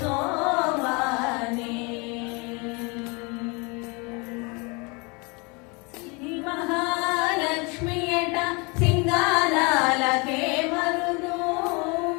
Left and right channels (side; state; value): right; quieter; 29.5 dB